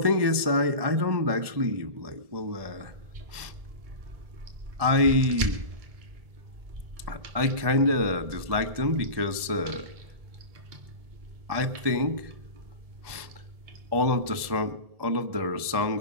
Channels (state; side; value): late; left; 1.7 ms